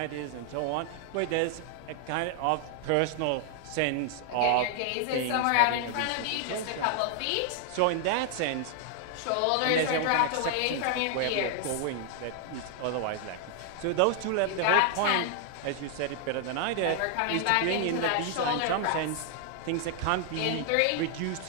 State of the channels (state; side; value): different; both; correlation 0.00